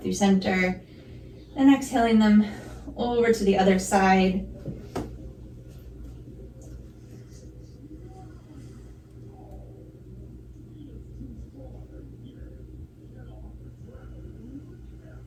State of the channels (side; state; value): both; identical; correlation 1.00